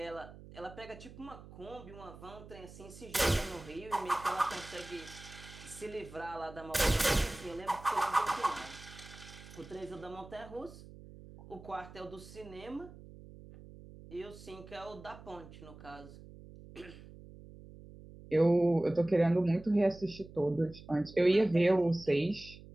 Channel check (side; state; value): right; noise; hum, 17 dB below the sound